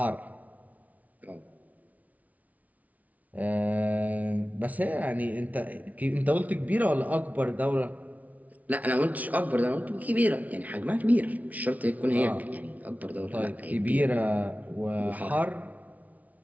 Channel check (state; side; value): late; left; 0.072 ms